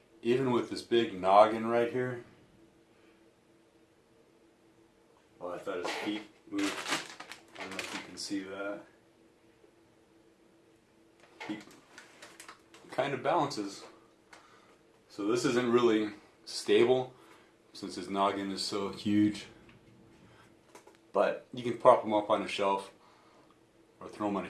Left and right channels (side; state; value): both; identical; correlation 1.00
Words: Even with this big noggin right here. Oh, I thought his feet moved. I don't know if you can see that. kind of balances. So this isn't really stable since his noggin is so huge. But you can prop them up on a shelf or throw them on a